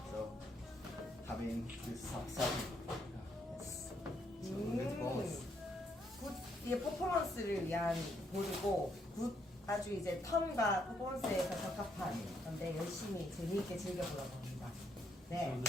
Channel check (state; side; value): normal; both; correlation 0.74